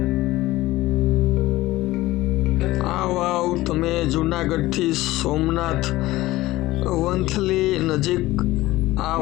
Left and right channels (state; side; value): quieter; right; 17.7 dB